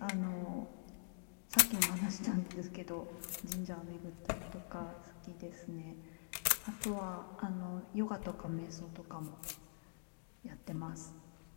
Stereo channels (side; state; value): right; silent; digital silence